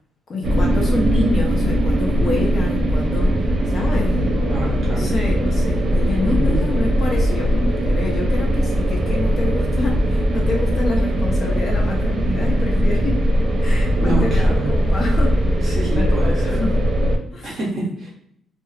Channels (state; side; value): normal; both; correlation 0.88